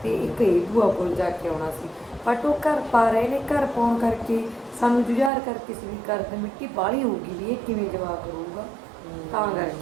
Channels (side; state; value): left; drops out; at 5.3 s